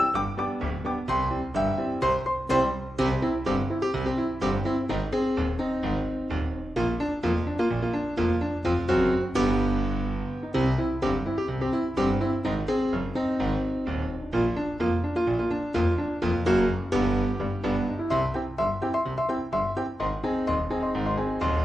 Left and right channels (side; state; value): both; normal; correlation 0.91